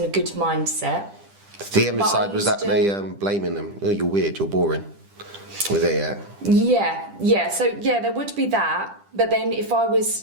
a good mindset. The envy side was that they blaming them. Oh, you're weird, you're boring. Was there, Yeah. So, yeah, there would be that. But then if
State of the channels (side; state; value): left; late; 10 ms